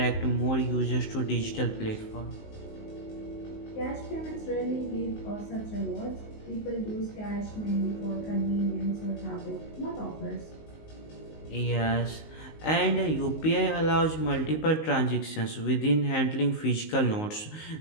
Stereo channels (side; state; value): right; late; 19 ms